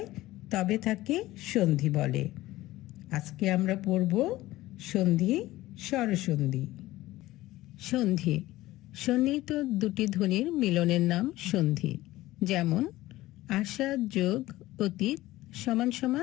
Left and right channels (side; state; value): right; quieter; 17.0 dB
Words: তবে তাকে সন্ধি বলে। আজকে আমরা পড়ব সন্ধি, স্বরসন্ধি। সন্ধি, সন্নিহিত দুটি ধ্বনির মিলনের নাম সন্ধি। যেমন, আশা যোগ অতীত সমান